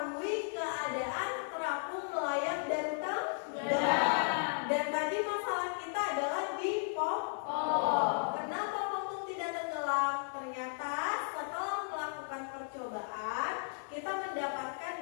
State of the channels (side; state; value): right; silent; 54 dB below the other